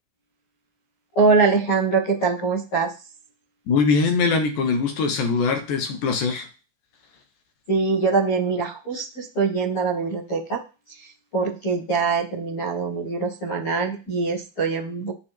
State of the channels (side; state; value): right; late; 14 ms